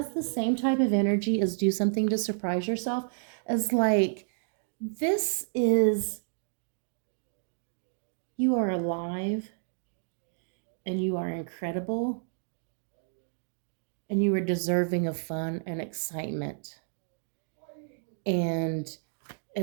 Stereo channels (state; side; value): silent; left; digital silence